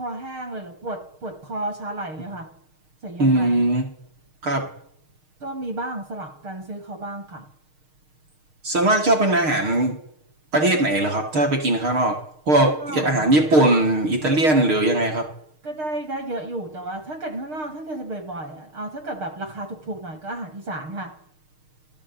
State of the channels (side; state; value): left; late; 6.5 ms